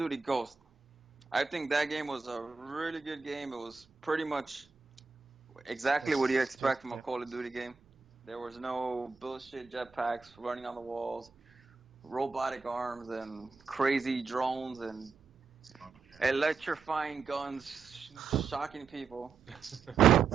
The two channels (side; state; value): left; quieter; 4.9 dB